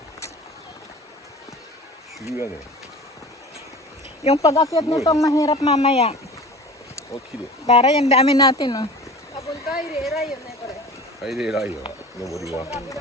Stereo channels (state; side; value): normal; both; correlation 0.39